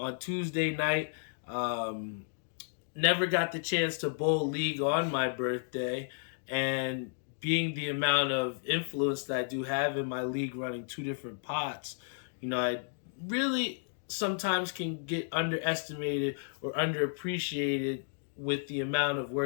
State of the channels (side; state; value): right; silent; digital silence